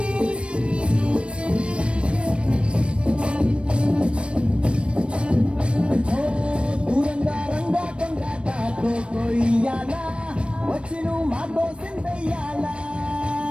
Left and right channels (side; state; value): left; late; 0.059 ms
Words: వచ్చిను మాతో సిందయ్యాలా